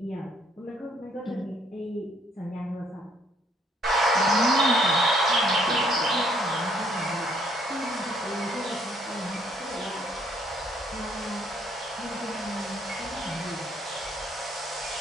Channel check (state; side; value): normal; both; correlation 0.66